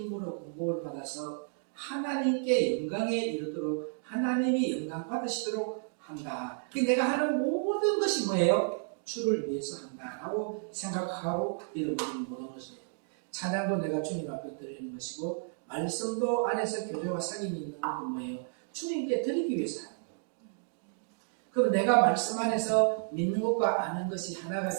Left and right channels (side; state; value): left; silent; digital silence